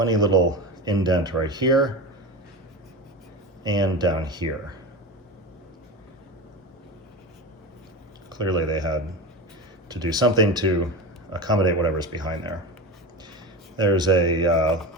little indent right here and down here. Clearly they had to do something to accommodate whatever's behind there. There's a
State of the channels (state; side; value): normal; both; correlation 0.24